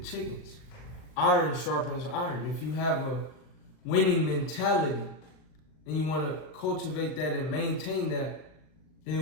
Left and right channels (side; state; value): right; late; 39 ms